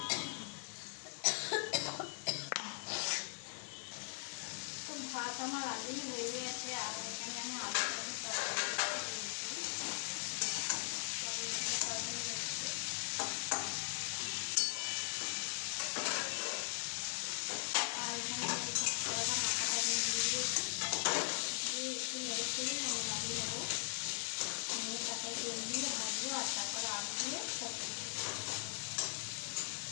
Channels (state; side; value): silent; right; digital silence